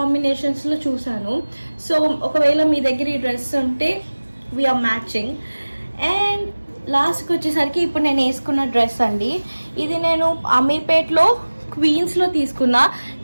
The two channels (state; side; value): inverted; both; correlation -1.00